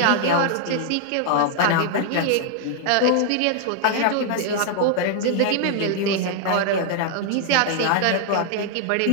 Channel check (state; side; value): different; both; correlation 0.00